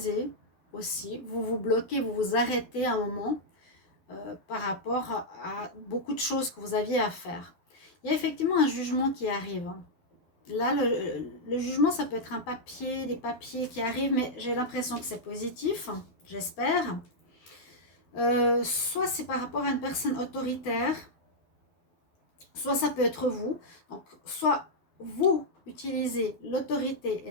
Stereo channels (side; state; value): right; late; 12 ms